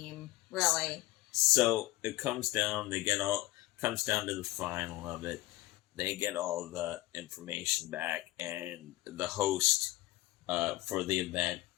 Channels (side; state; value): right; quieter; 18.5 dB